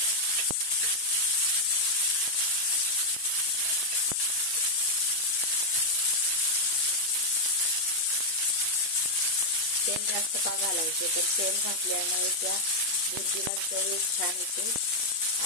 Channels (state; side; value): late; right; 8.1 ms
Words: तेल जास्त का घालायचे तर तेल घातल्यामुळे त्या भुर्जीला चव छान येते